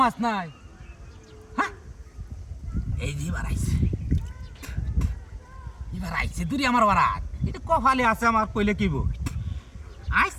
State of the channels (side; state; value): both; identical; correlation 1.00